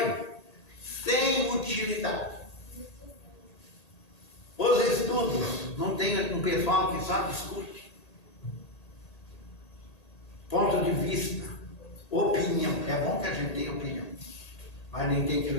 sem utilidade. Os estudos, não tem um pessoal que só discute. Ponto de vista, opinião. É bom que a gente tenha opinião, mas nem tem que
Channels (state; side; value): late; right; 1.8 ms